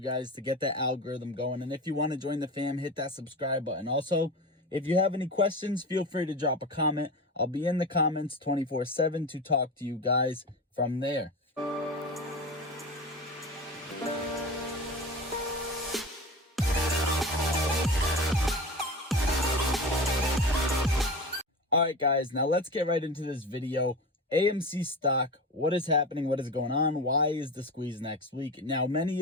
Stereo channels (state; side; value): normal; both; correlation 0.28